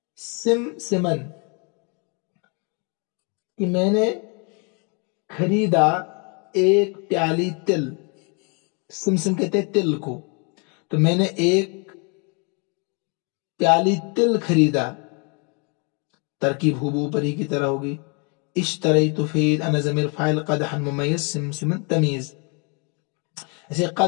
سمسما، کہ میں نے خریدا ایک پیالی تل. سمسم کہتے ہیں تل کو. تو میں نے ایک پیالی تل خریدا. ترکیب ہو پری کی طرح ہوگی. اشتریت فعل، انا ضمیر فاعل، قدحا ممیز، سمسما تمیز. ایسے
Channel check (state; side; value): quieter; right; 34.5 dB